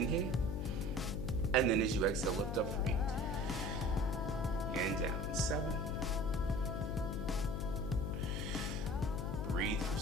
And then as you exhale, lift up for 8. And down. 7. Breathe for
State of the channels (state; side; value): noise; left; hum, 3 dB below the sound